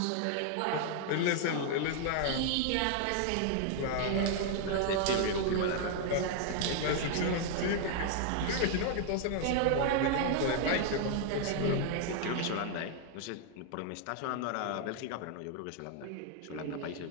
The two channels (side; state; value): both; different; correlation 0.00